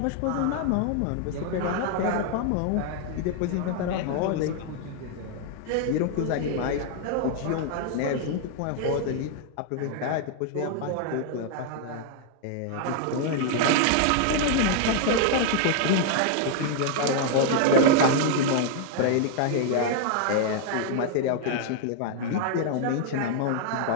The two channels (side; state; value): both; different; correlation 0.00